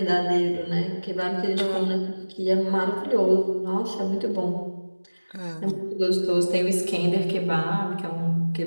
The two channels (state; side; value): inverted; both; correlation -1.00